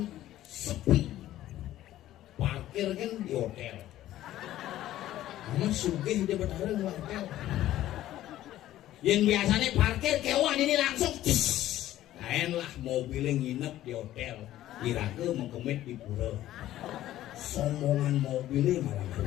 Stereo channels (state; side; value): quieter; right; 13.8 dB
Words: sepi. Parkir kan di hotel. Kamu sugih dia bertarung di hotel. Yang biasanya parkir kewan ini langsung lain lah mobilnya nginep di hotel. Kira-kira mengkemit di pura. Sombongan mobilnya malah